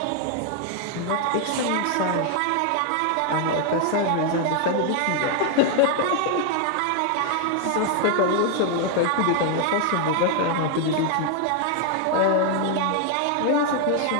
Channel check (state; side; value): different; both; correlation 0.00